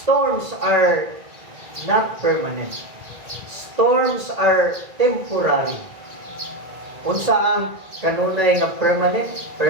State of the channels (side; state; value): left; late; 2.0 ms